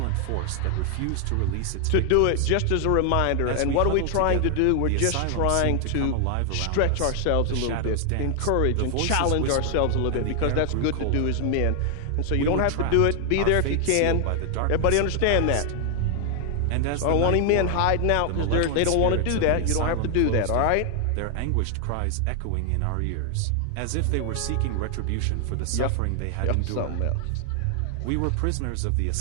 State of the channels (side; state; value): both; different; correlation 0.00